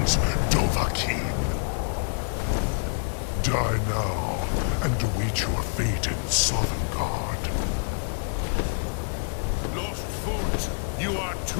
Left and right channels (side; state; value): right; silent; digital silence